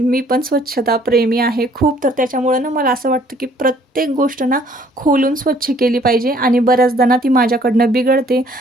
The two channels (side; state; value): both; normal; correlation 0.60